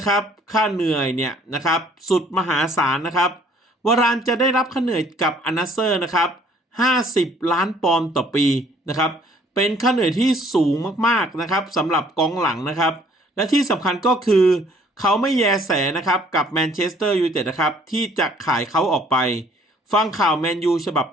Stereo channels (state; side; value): normal; both; correlation 0.59